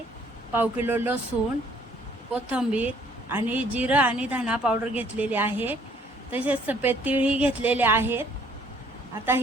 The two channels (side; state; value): both; normal; correlation 0.61